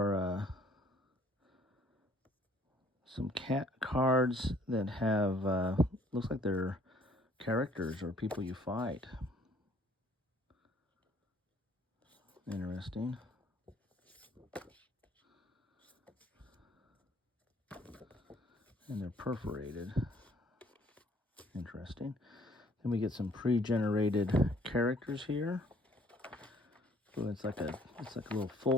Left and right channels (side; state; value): both; normal; correlation 0.60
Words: some cat cards that have, looks like they're characters or people you fight. Interesting. And they're perforated. Interesting. Then we get some pre-generated characters here. So it's like a little